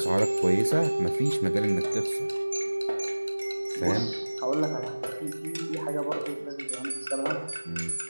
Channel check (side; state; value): both; inverted; correlation -1.00